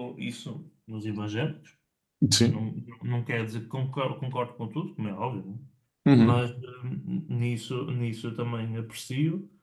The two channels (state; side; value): identical; both; correlation 1.00